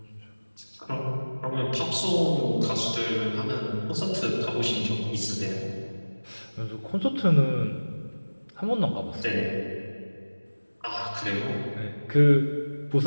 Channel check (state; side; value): inverted; both; correlation -1.00